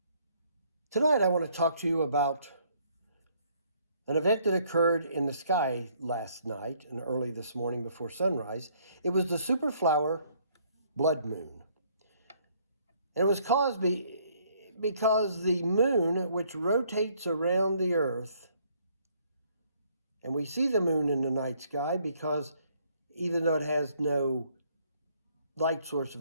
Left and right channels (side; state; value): both; inverted; correlation -0.65